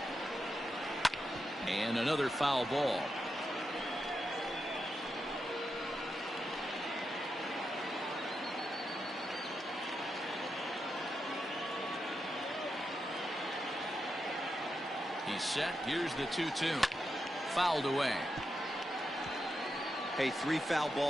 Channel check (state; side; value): normal; both; correlation 0.86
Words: And another foul ball. He's set. Here's the 2-2. Fouled away. Hey, 3 foul